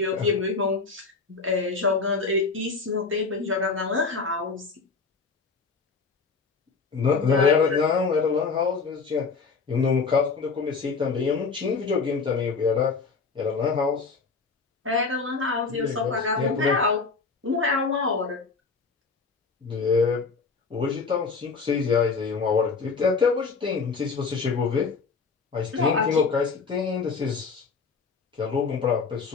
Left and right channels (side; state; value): right; quieter; 4.7 dB